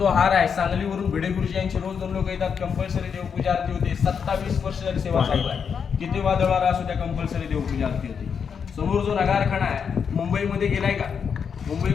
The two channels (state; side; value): quieter; right; 6.7 dB